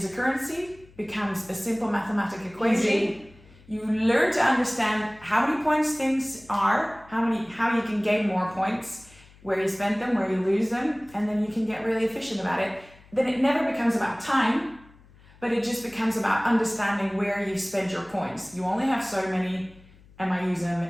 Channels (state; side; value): noise; left; hum, 25 dB below the sound